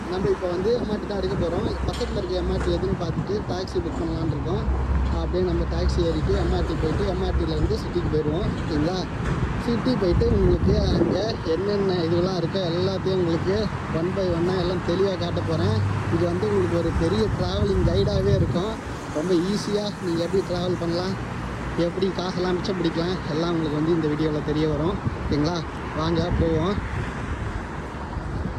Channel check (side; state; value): both; identical; correlation 1.00